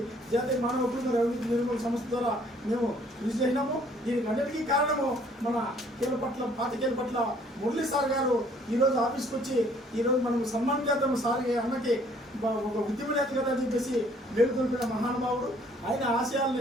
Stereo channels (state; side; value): normal; both; correlation 0.60